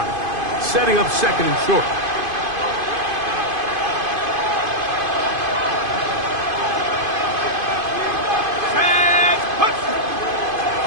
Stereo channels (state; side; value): late; left; 2.5 ms